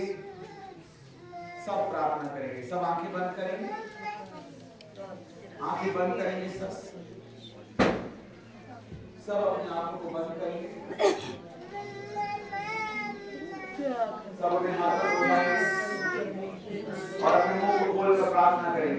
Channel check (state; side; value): identical; both; correlation 1.00